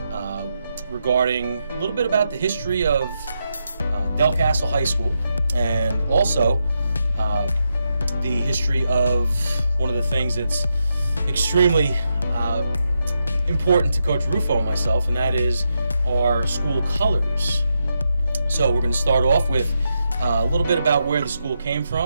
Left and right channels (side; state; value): both; inverted; correlation -0.84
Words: regarding a little bit about the history of Delcastle High School, and also the history of one of the things that's extremely important to Coach Rufo and myself, and that is our school colors. So we're going to start off with a little bit about where the school came